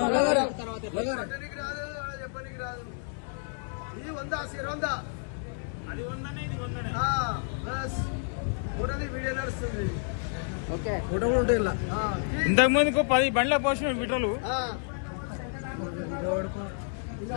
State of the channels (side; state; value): right; silent; 58 dB below the other